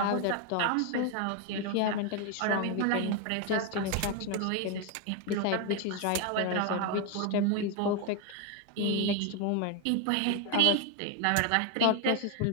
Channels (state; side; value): different; both; correlation 0.02